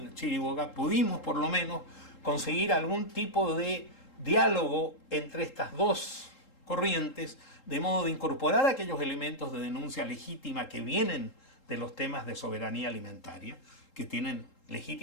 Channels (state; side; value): late; right; 3.8 ms